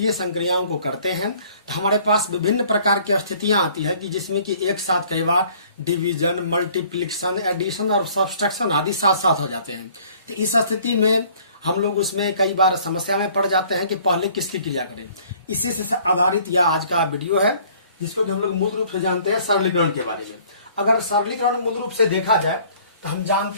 संक्रियाओं को करते हैं तो हमारे पास विभिन्न प्रकार की स्थितियां आती है कि जिसमें कि एक साथ कई बार डिवीजन, मल्टीप्लिकेशन, एडिशन और सब्सट्रैक्शन आदि साथ साथ हो जाते हैं। तो इस स्थिति में हम लोग उसमें कई बार समस्या में पड़ जाते हैं कि पहले किसकी क्रिया करें। इसी से आधारित यह आज का वीडियो है, जिसको कि हम लोग मूल रूप से जानते हैं सरलीकरण के बारे में। अगर सरलीकरण मूल रूप से देखा जाए तो हम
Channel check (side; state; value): both; inverted; correlation -0.56